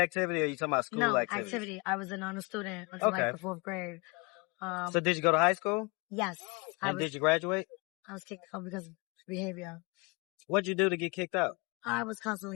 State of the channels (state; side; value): quieter; right; 28.5 dB